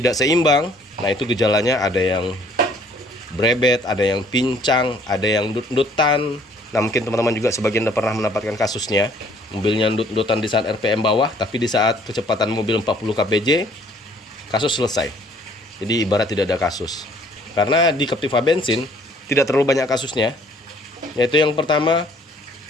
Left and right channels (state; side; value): normal; both; correlation 0.59